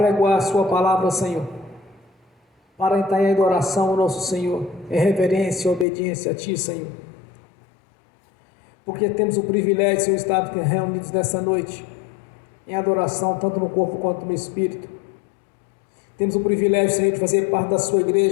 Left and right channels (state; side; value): drops out; right; at 5.9 s